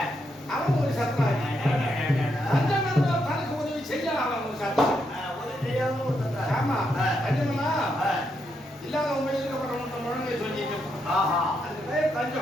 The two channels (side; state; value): both; normal; correlation 0.80